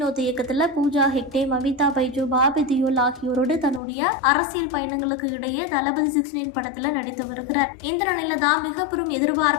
இயக்கத்துல பூஜா ஹெக்டே, மமிதா பைஜு, பாபி தியோல் ஆகியோரோடு தன்னுடைய அரசியல் பயணங்களுக்கு இடையே தளபதி 69 படத்துல நடித்து வருகிறார். இந்த நிலையில தான் மிக பெரும்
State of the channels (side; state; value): right; drops out; at 3.8 s